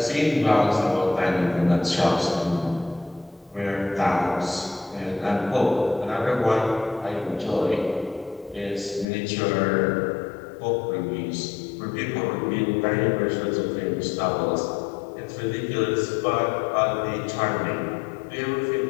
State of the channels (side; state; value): right; drops out; at 9.1 s